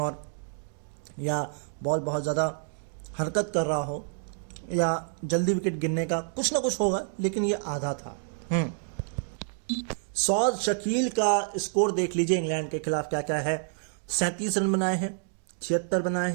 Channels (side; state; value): left; silent; digital silence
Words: या बॉल बहुत ज़्यादा हरकत कर रहा हो, या जल्दी विकेट गिरने का कुछ ना कुछ होगा, लेकिन ये आधा था। सौद शकील का स्कोर देख लीजिए इंग्लैंड के खिलाफ क्या क्या है। 37 रन बनाए हैं, 76 बनाए